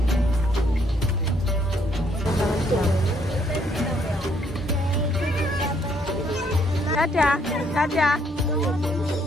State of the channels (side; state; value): both; normal; correlation 0.69